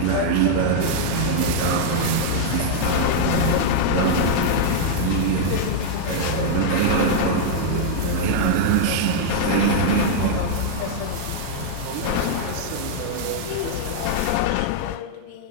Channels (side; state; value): both; different; correlation -0.02